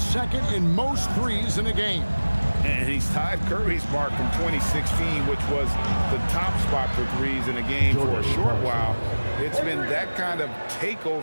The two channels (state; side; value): inverted; both; correlation -1.00